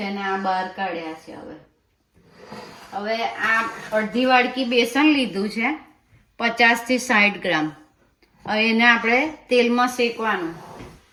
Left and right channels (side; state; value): both; identical; correlation 1.00